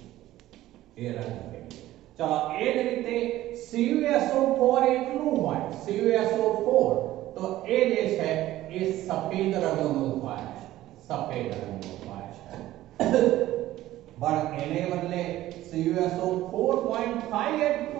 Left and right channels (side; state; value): left; quieter; 15.1 dB